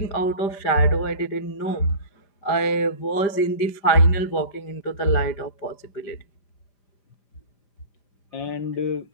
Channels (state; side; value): late; right; 5.1 ms